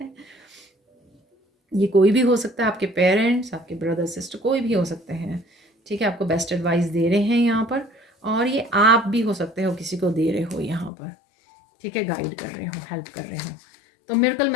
ये कोई भी हो सकता है, आपके पेरेंट्स, आपके ब्रदर सिस्टर, कोई भी हो सकते हैं, ठीक है। आपको बेस्ट एडवाइस दे रहे हैं यहाँ पर, और ये आप भी हो सकते हो, किसी को दे रहे हो यहाँ पर, ठीक है, गाइड कर रहे हो, हेल्प कर रहे हो। तो मिरेकल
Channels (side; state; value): right; drops out; at 10.9 s